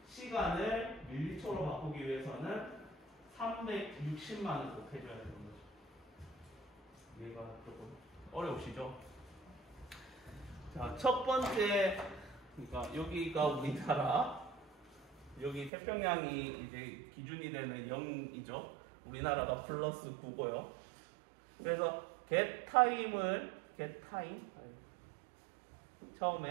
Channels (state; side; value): drops out; left; at 15.7 s